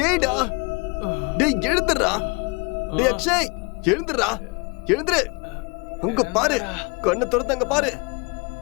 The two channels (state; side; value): quieter; right; 30.2 dB